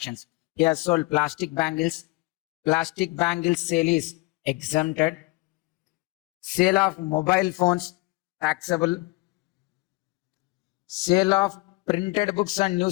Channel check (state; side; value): quieter; right; 22.7 dB